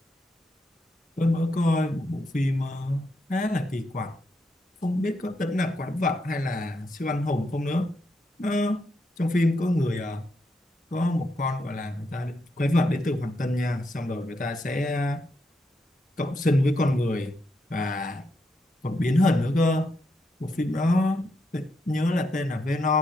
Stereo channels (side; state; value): both; normal; correlation 0.81